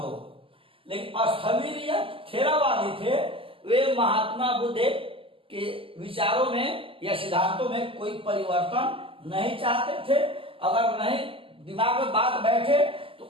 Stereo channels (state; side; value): late; left; 0.26 ms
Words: हो। लेकिन स्थविर या थेरावादी थे, वे महात्मा बुद्ध के विचारों में या सिद्धांतों में कोई परिवर्तन नहीं चाहते थे। अगर नहीं दिमाग में बात बैठे तो